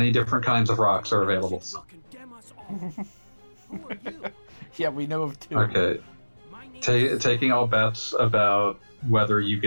different kinds of rocks are available. You'll condemn us all. Who are you? Yeah, we know of 2. Okay. Taking all bets about whether you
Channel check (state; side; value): inverted; both; correlation -1.00